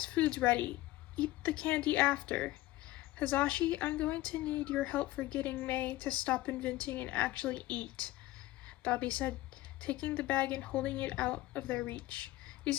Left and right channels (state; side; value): quieter; right; 17.2 dB